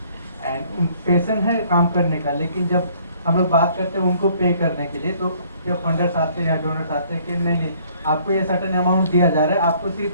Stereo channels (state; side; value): inverted; both; correlation -0.60